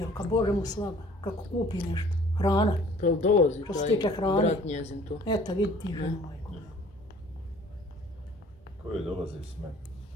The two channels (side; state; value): both; normal; correlation 0.53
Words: ka Bože mu slava, kako kupi nešto. Hrana. Pa dolazi što se tiče hrane. Brat njezin tu. Eto, vidi ti ženu moju. Ko je dolazi s mene?